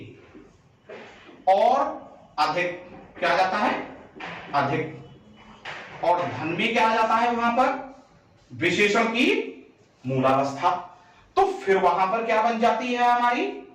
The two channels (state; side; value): identical; both; correlation 1.00